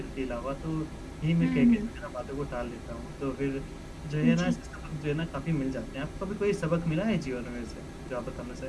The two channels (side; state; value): both; identical; correlation 1.00